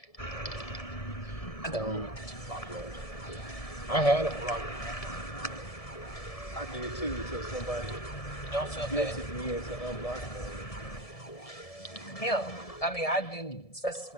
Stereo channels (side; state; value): right; late; 1.7 ms